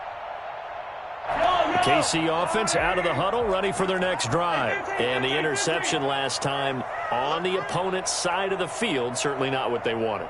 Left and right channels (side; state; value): both; identical; correlation 1.00